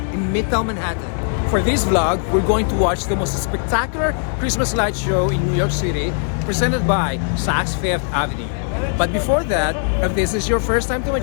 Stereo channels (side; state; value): right; silent; 60 dB below the other